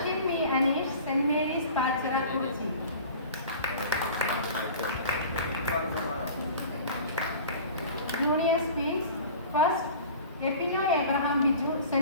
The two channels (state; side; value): inverted; both; correlation -0.41